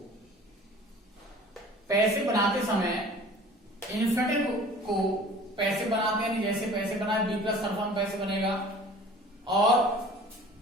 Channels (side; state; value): both; normal; correlation 0.46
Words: पैसे बनाते समय इन्फिनेटिव को पैसे बनाते हैं, जैसे पैसे बनाए बी प्लस सरफम पैसे बनेगा, और